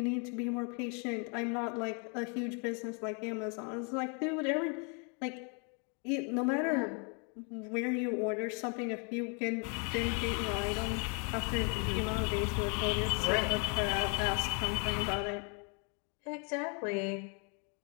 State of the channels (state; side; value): quieter; right; 36.8 dB